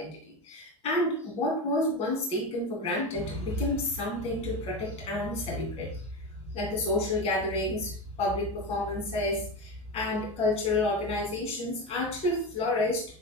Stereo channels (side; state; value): both; normal; correlation 0.20